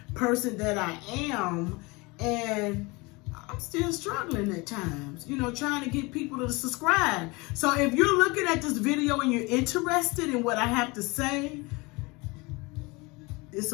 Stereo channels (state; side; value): quieter; right; 25.4 dB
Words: person that I am. And I'm still struggling at times, you know, trying to get people to subscribe. So if you're looking at this video and you're interested in what I have to say, it's